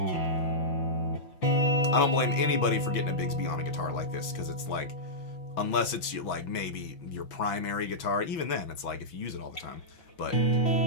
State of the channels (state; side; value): late; right; 6.1 ms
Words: I don't blame anybody for getting a Bigsby on a guitar like this, because it's like, unless it's like maybe your primary guitar, even then it's like if you use it all the time, but